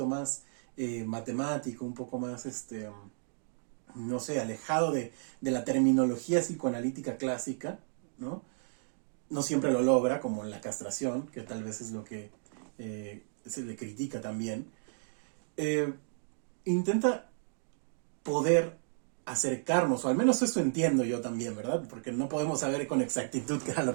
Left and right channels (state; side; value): silent; left; digital silence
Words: más matemático, un poco más, no sé, alejado de la terminología psicoanalítica clásica, ¿no? No siempre lo logra, como en la castración, que tal vez es lo que se le critica también. Intenta poder acercarnos, o al menos eso entiendo yo también, ¿verdad? Porque no podemos saber con exactitud qué era lo